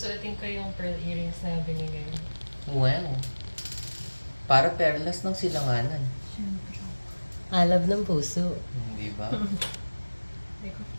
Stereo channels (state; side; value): inverted; both; correlation -1.00